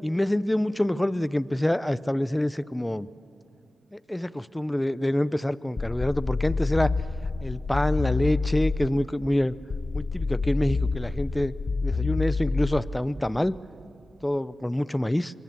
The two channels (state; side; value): normal; both; correlation 0.98